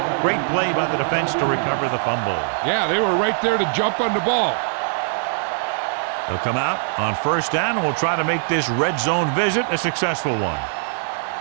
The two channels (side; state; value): left; silent; 65 dB below the other